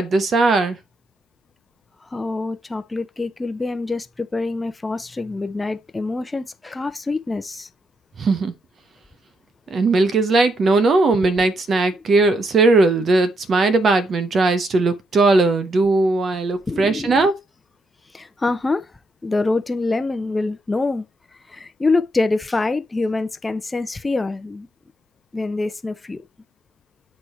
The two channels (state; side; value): normal; both; correlation 0.78